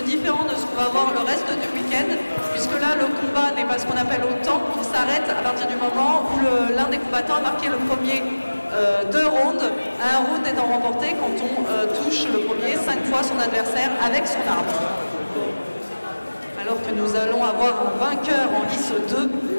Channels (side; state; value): both; inverted; correlation -1.00